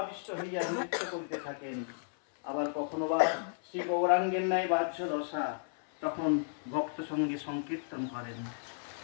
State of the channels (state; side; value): silent; right; 55 dB below the other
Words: হইয়া নৃত্য করিতে থাকেন। আবার কখনো বা শ্রী গৌরাঙ্গের ন্যায় বাহ্য দশা, তখন ভক্ত সঙ্গে সংকীর্তন করেন।